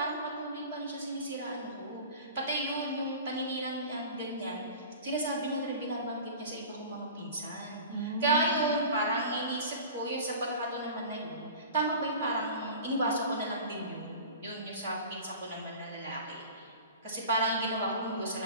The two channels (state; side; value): inverted; both; correlation -0.37